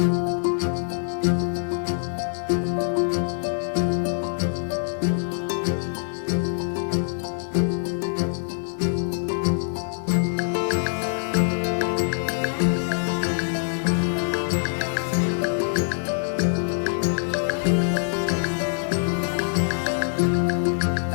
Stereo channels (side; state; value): right; silent; 58 dB below the other